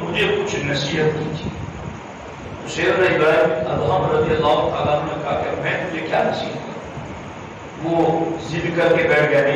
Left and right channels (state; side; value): identical; both; correlation 1.00